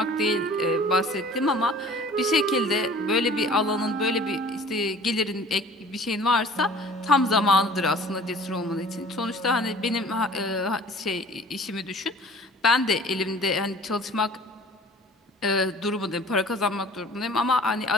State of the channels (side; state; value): both; normal; correlation 0.48